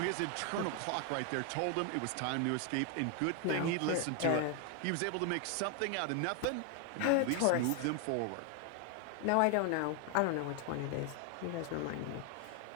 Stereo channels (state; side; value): different; both; correlation 0.01